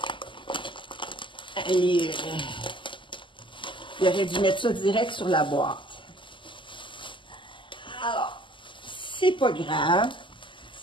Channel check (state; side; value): late; right; 0.24 ms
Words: il aurait dû mettre ça direct sur la boîte. Alors, c'est pas grave.